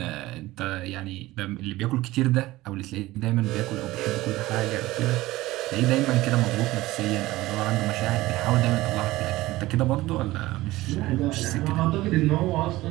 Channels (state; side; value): quieter; left; 18.0 dB